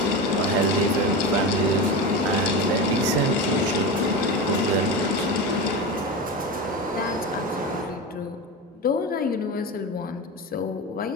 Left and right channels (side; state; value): both; normal; correlation 0.23